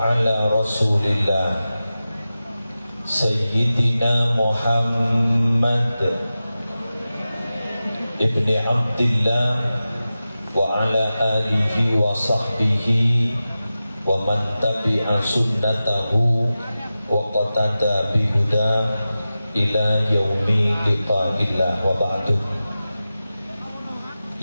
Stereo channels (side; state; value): both; inverted; correlation -0.94